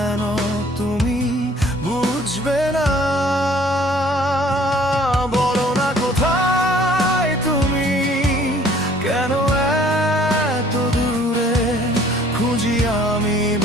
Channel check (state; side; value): normal; both; correlation 0.56